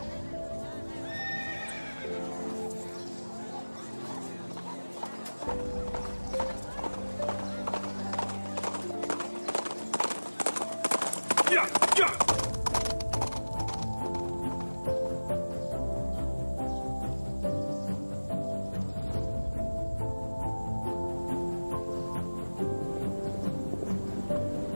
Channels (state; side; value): inverted; both; correlation -1.00